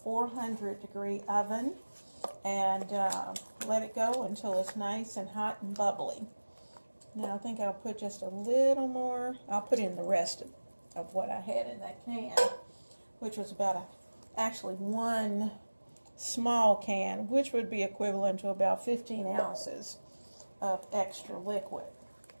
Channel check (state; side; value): inverted; both; correlation -1.00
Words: oven and let it go until it's nice and hot and bubbly. Now I think I'll put just a little more. I'll put in the rest of what I had in that can, which was about actually one small can, which would be equivalent to about 15 ounces of extra liquid.